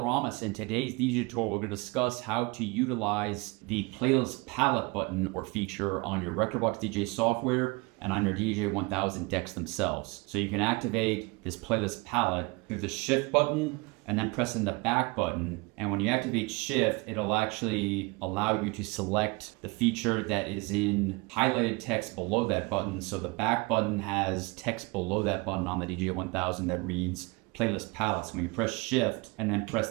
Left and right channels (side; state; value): left; quieter; 26.7 dB